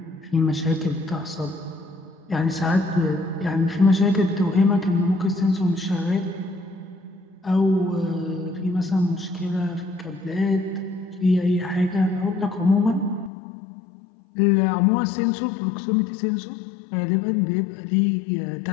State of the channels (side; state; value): right; drops out; at 13.3 s